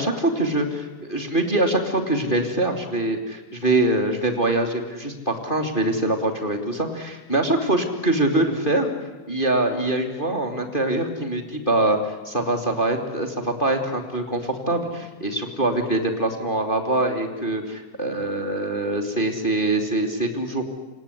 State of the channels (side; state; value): right; late; 2.5 ms